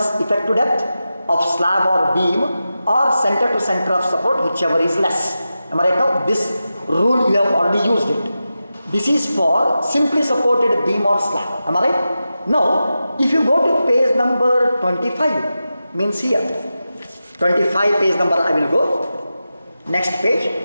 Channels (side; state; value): both; inverted; correlation -0.92